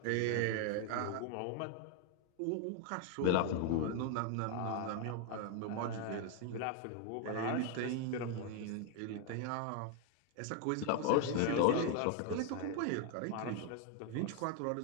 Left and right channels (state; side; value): different; both; correlation 0.01